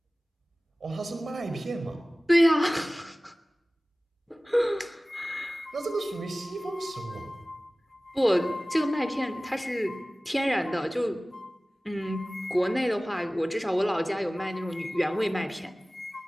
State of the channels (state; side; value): normal; both; correlation 0.98